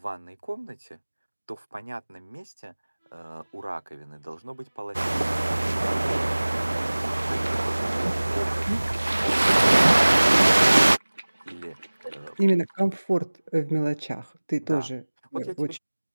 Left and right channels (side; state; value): both; inverted; correlation -1.00